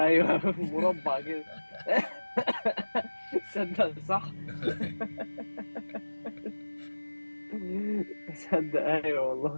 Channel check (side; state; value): both; inverted; correlation -1.00